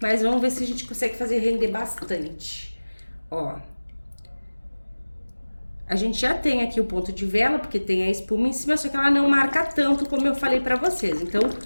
vamos ver se a gente consegue fazer render bastante. Ó, a gente já tem aqui o ponto de vela, porque tem a espuma em cima, só que ela não marca tanto como eu falei pra vocês. Então,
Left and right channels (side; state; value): both; inverted; correlation -1.00